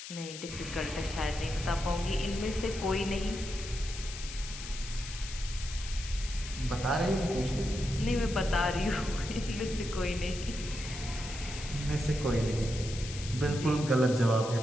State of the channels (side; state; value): left; noise; hiss, 10 dB below the sound